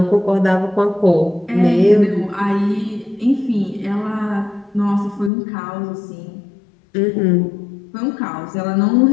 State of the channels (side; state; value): right; drops out; at 5.3 s